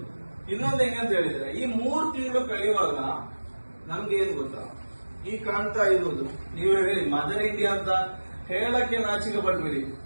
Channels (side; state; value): both; inverted; correlation -1.00